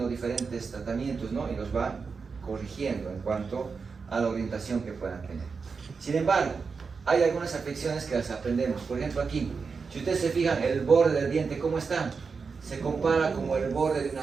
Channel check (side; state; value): left; quieter; 5.1 dB